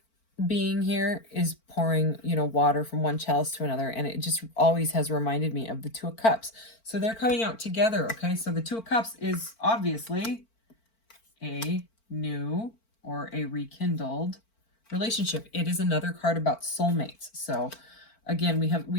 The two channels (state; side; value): late; right; 4.5 ms